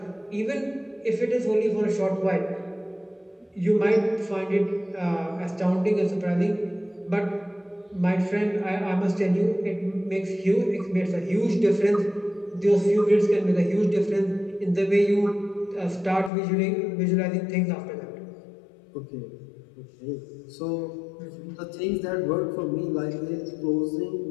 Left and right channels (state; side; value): drops out; right; at 16.3 s